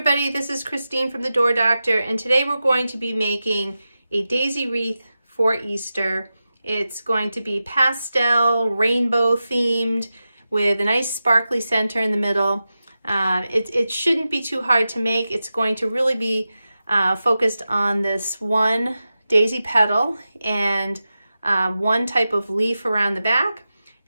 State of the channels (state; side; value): inverted; both; correlation -0.92